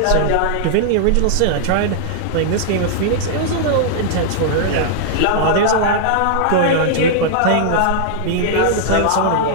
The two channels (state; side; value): different; both; correlation -0.01